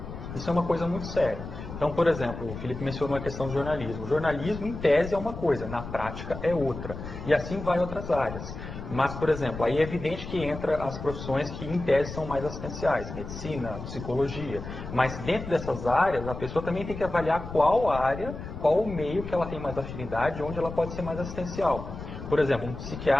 Isso é uma coisa muito séria. Então, por exemplo, o Felipe mencionou a questão do jornalismo. O jornalismo, em tese, é uma coisa, na prática é outra. E assim vai outras áreas. Mas, por exemplo, aí é evidente que entra as profissões que, em tese, são mais assistenciais. Medicina, psicologia. Mas dentro dessas áreas, a pessoa também tem que avaliar qual área, qual o meio que ela tem mais afinidade, onde ela pode ser mais assistencial. Por exemplo, um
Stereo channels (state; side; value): noise; left; rumble, 9 dB below the sound